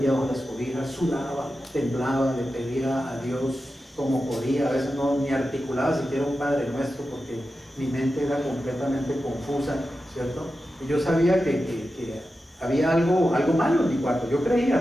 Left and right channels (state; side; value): normal; both; correlation 0.91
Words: bajo las cobijas, sudaba, temblaba, le pedía a Dios como podía, a veces no ni articulaba siquiera un Padre Nuestro porque mi mente era completamente confusa, ¿cierto? Y yo sabía que había algo malo en mi cuarto. Yo creía